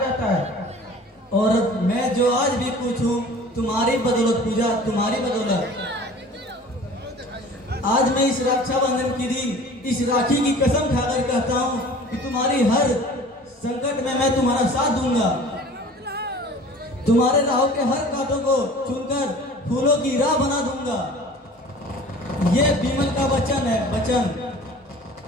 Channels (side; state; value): both; normal; correlation 0.44